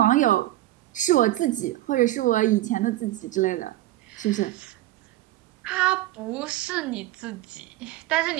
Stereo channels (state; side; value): quieter; left; 15.6 dB